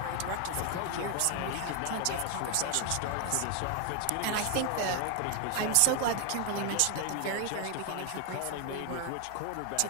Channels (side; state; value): both; different; correlation 0.00